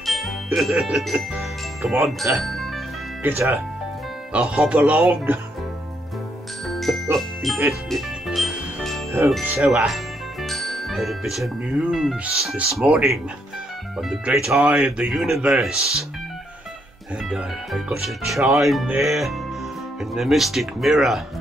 Come on, get a hop along. Oh, so, had a bit of news this morning on the great eye of the universe, and I got a chime there in the mystic mirror,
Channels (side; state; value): both; normal; correlation 0.74